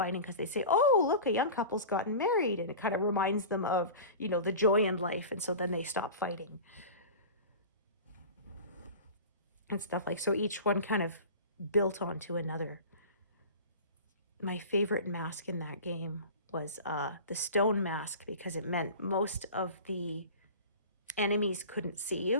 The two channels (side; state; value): both; inverted; correlation -0.35